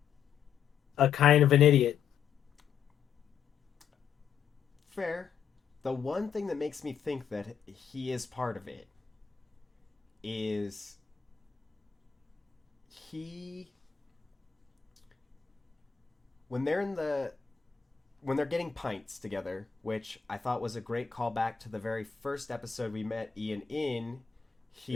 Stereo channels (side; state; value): right; quieter; 7.3 dB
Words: a kind of an idiot. Fair. The one thing that makes me think that he is part of it is he when they're in the when they're getting pints together, which I thought was a great callback to the very first episode we met Ian in.